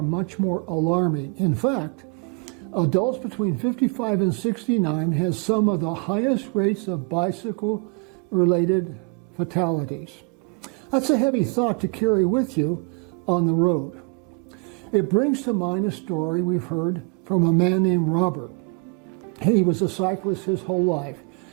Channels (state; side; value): quieter; left; 36.4 dB